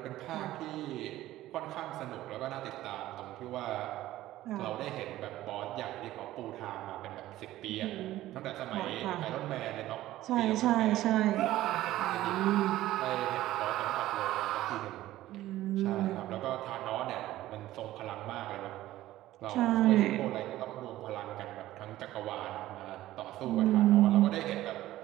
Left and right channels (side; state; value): left; quieter; 15.1 dB